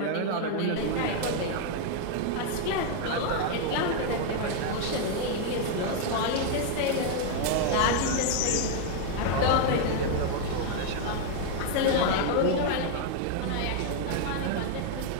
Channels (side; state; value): both; different; correlation 0.00